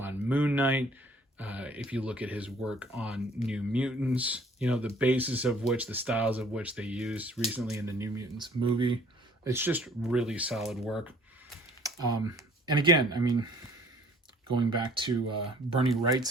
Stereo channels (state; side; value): normal; both; correlation 0.56